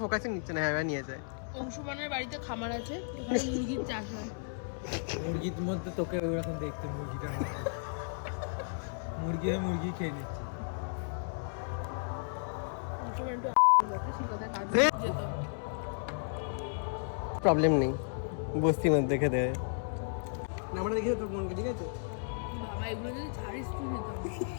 ফোকাসে নিচ্ছে না। হ্যাঁ নিয়ে যায়। অংশুমানের বাড়িতে খামার আছে, ওখানে মুরগির চাষ হয়। মুরগির মধ্যে তোকে ওরকম দেখতে, মুরগিটার মধ্যে মুরগি খেয়ে নিচ্ছে। অংশুমান তো প্রবলেম নেই, বস্তির মধ্যে খেতে হয়। আমরা দেখি তোর মনকে, ঠিক আছে? বাবা এগুলো যদি ছাড়িস তুই নিতাম।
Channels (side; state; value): right; silent; 55 dB below the other